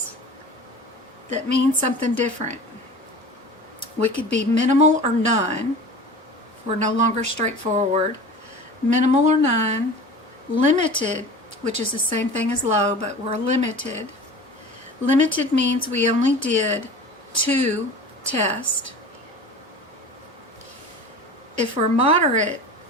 that mean something different. We could be minimal or none. We're no longer straightforward. Minimal or none. Limited, which is the same thing as low, but we're limited. Limited means we only did 2 tests. If we're moderate,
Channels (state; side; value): normal; both; correlation 0.37